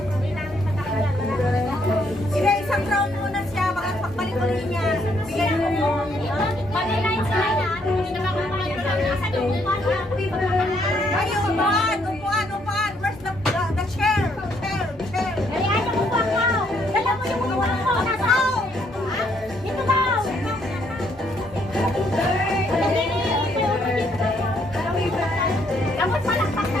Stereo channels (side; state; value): both; normal; correlation 0.71